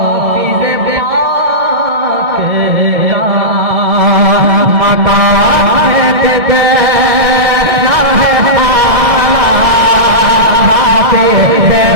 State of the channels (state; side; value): late; left; 1.7 ms